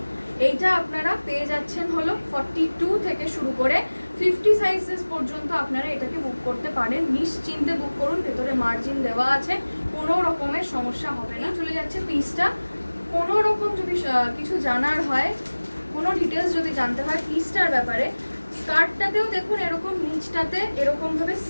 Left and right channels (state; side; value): inverted; both; correlation -1.00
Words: এইটা আপনারা পেয়ে যাচ্ছেন হলো 42 থেকে শুরু করে 50 সাইজেস পর্যন্ত আপনারা এটাকে বুক করতে পারেন। নিশ্চিন্তে বুক করুন, ভেতরে মার্জিন দেওয়া আছে, কোনো রকমের সমস্যা হবে না। চলে যাচ্ছে পিসটা। কোনো রকম যদি কিছু জানার হয়, কোনো ডিটেলস যদি জানতে হয় পিসটার ব্যাপারে, স্কার্টটাতেও দেখুন এরকম নিচটাতে এরকমভাবে